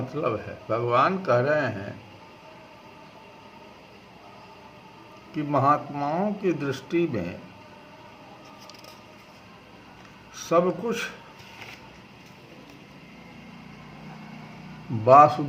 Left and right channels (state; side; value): identical; both; correlation 1.00